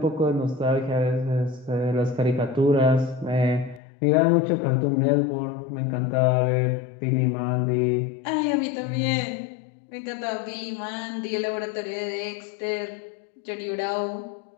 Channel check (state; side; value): drops out; right; at 3.8 s